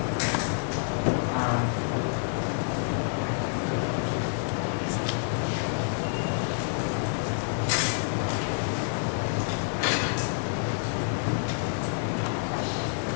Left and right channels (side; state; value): right; silent; 59 dB below the other